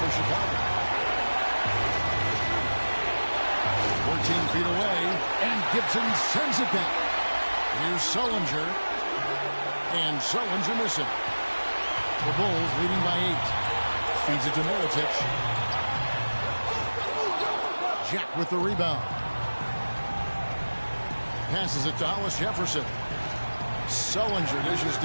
Chicago. 14 feet away, and Gibson sends it back. Here's Sullinger, and Sullinger missing. The Bulls leading by 8. Feeds it to Mirotic. Jack with the rebound. Passes it to Hollis Jefferson. Sullinger dishes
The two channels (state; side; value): inverted; both; correlation -1.00